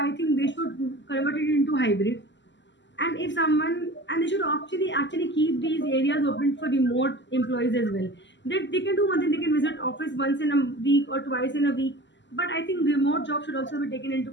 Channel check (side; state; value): right; late; 0.53 ms